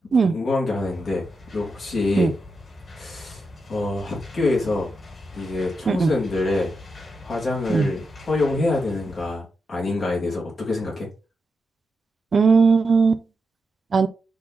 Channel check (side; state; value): both; normal; correlation 0.86